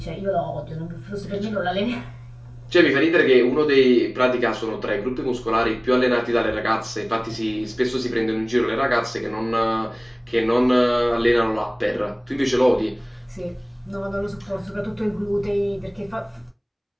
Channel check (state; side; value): identical; both; correlation 1.00